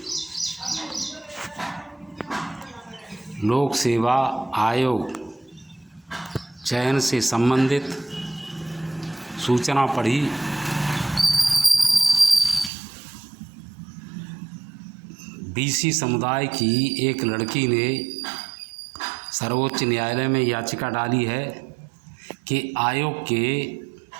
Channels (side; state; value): left; drops out; at 12.7 s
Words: लोक सेवा आयोग चयन से संबंधित सूचना पढ़ी। बीसी समुदाय की एक लड़की ने सर्वोच्च न्यायालय में याचिका डाली है कि आयोग के